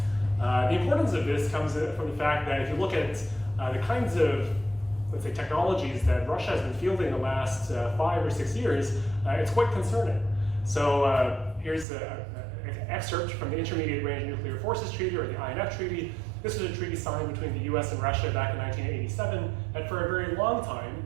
The importance of this comes from the fact that if you look at the kinds of, let's say, technologies that Russia has been fielding the last 5 or 6 years, it's quite concerning. So here's an excerpt from the Intermediate Range Nuclear Forces Treaty, or the INF Treaty. This was a treaty signed between the US and Russia back in 1987, and for a very long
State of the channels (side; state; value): left; drops out; at 11.9 s